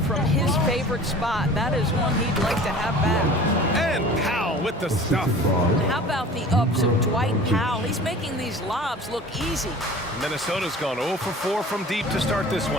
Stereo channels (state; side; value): normal; both; correlation 0.43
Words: from his favorite spot. That is one he'd like to have back. And Powell with the stuff. How about the ups of Dwight Powell? He's making these lobs look easy. Minnesota's gone 0 for 4 from deep to start this